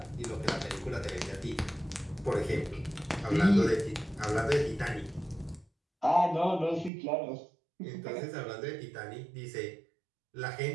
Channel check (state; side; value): drops out; left; at 6.9 s